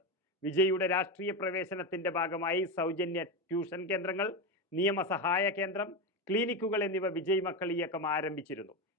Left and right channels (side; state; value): both; normal; correlation 0.15